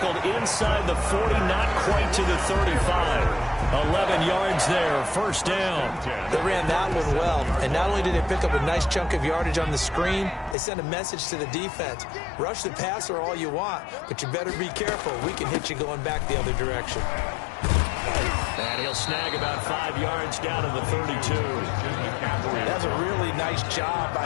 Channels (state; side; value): drops out; right; at 10.6 s